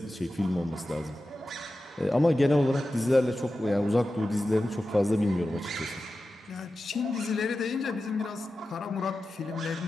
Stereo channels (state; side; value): normal; both; correlation 0.93